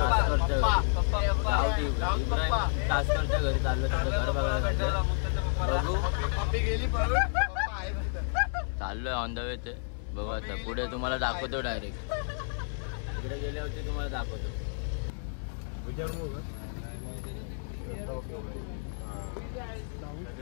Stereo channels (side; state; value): right; silent; digital silence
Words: कासकरच्या घरी चाललो त्याचं घर बघायला. बघू चाललोय ऑन द वे ते बघू आता पुढे तुम्हाला दाखवतो. डायरेक्ट तिकडे गेले होते तुम्हाला दाखवतो.